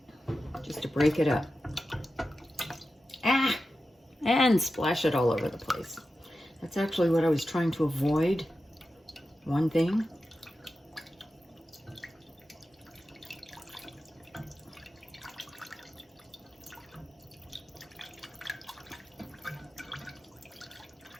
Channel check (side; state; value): both; normal; correlation 0.92